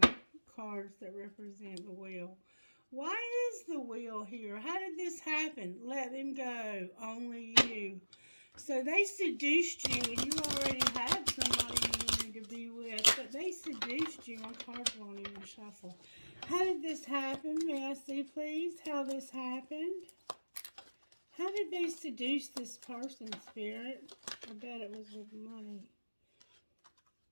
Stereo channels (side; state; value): both; inverted; correlation -1.00